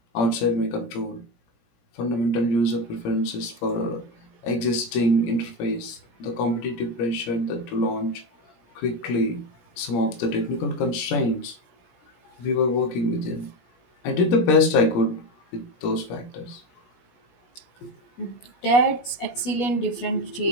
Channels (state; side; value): late; right; 17 ms